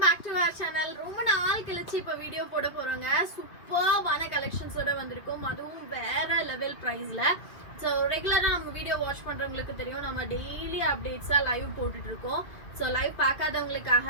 back to our channel. ரொம்ப நாள் கழிச்சு இப்ப வீடியோ போட போறோங்க. சூப்பர்வான கலெக்ஷன்ஸோட வந்திருக்கோம். அதுவும் வேற லெவல் பிரைஸ்ல. ஸோ ரெகுலரா நம்ம வீடியோ வாட்ச் பண்றவங்களுக்கு தெரியும், நம்ம டெய்லி அப்டேட்ஸா லைவ் போட்டுட்டு இருக்கோம். ஸோ லைவ்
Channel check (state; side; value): late; right; 2.3 ms